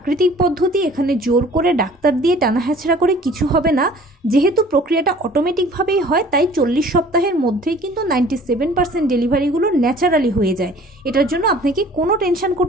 পদ্ধতি, এখানে জোর করে ডাক্তার দিয়ে টানা হেঁচড়া করে কিছু হবে না। যেহেতু প্রক্রিয়াটা অটোমেটিকভাবেই হয়, তাই 40 সপ্তাহের মধ্যেই কিন্তু 97% ডেলিভারিগুলো ন্যাচারালি হয়ে যায়। এটার জন্য আপনাকে কোনো টেনশন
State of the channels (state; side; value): normal; both; correlation 0.50